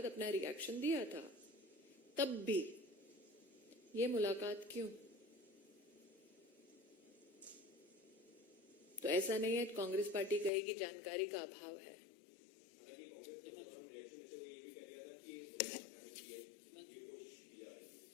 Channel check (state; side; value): drops out; right; at 10.5 s